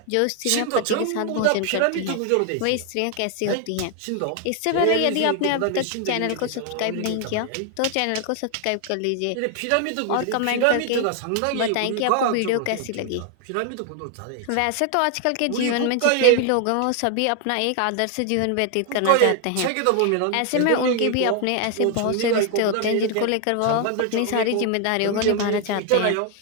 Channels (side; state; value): both; different; correlation 0.00